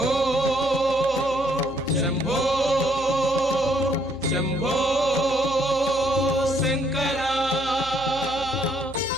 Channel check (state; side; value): noise; left; hum, 16 dB below the sound